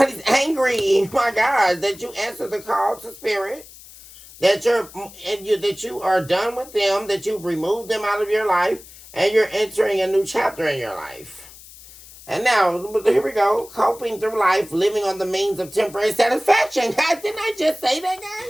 angry, my God, that you answered the call to spirit, that you are done with them, that you've removed them out of your life, and you're entering a new chapter in your life. And now, here we go, coping through life, living on the means of temporary satisfaction. Guys, didn't I just say that,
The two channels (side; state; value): left; noise; hiss, 19 dB below the sound